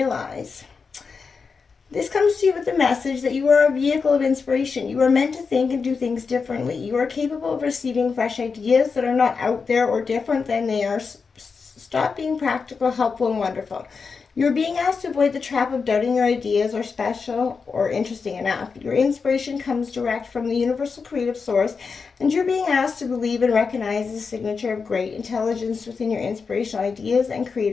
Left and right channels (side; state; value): right; quieter; 5.1 dB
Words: This comes to you with the message that you are a vehicle of inspiration. You are meant to think and do things differently. You are capable of receiving fresh ideas that are not out there or different than they are. Stop being practical, helpful, and wonderful. You're being asked to avoid the trap of doubting your ideas are special or interesting enough. Your inspiration comes direct from the universal creative source, and you're being asked to believe and recognize the signature of great intelligence within your inspirational ideas and